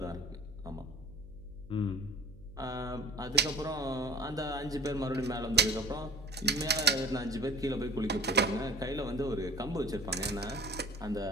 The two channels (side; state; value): right; noise; hum, 20 dB below the sound